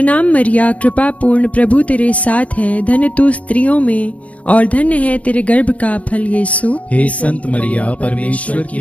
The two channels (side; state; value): right; late; 0.067 ms